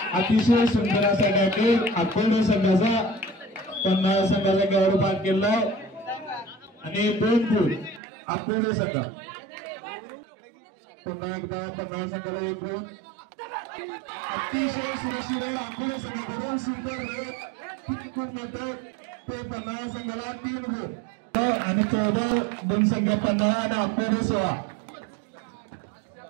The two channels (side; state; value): left; drops out; at 8.0 s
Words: अतिशय सुंदर असा खेळ अकोला संघाचा 50 संघाचा गौरव पार केला आणि 2 गुण अकोला संघ. पुन्हा एकदा 50 संघाला 1 गुण. अतिशय सुरक्षित अकोला संघाकडून सुंदर गुण मिळतो. ते 50 संघाला 3 गुण आणि 14 गुण संघ 50 आणि अकोला 16.